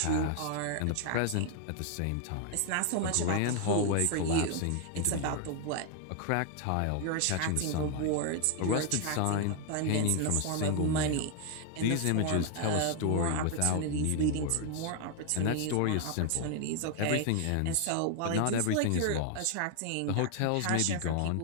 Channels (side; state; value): both; different; correlation 0.00